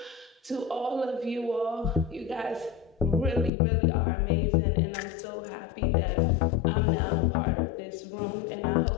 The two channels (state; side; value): drops out; right; at 3.5 s